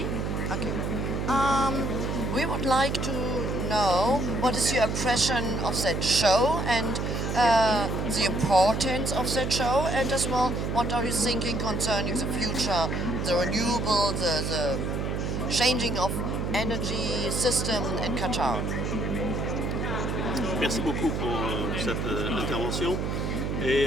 Okay. We would like to know what is your impression of that show and the importance of that show, and as well, what are you thinking concerning the future, the renewable, the changing of energy system in Qatar? Merci beaucoup pour cette intervention.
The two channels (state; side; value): noise; right; hum, 1 dB below the sound